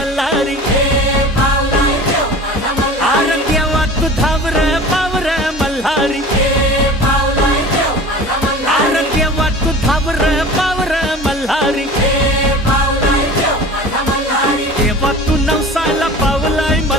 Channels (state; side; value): normal; both; correlation 0.38